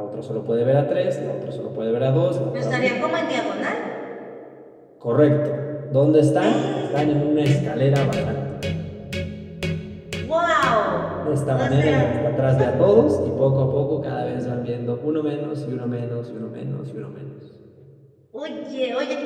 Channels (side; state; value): both; identical; correlation 1.00